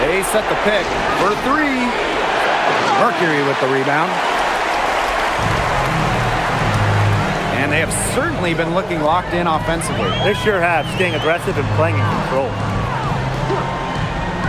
set the pick for three. Mercury with the rebound. And they have certainly been looking locked in offensively. They sure have, staying aggressive and playing in control.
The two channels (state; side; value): identical; both; correlation 1.00